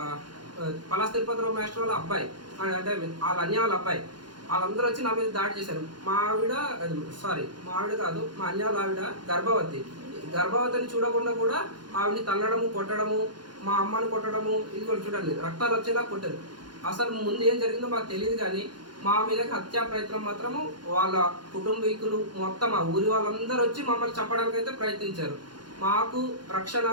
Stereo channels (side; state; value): left; late; 0.71 ms